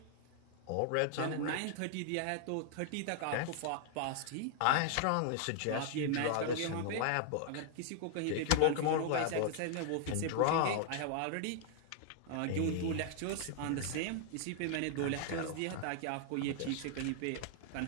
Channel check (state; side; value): different; both; correlation -0.01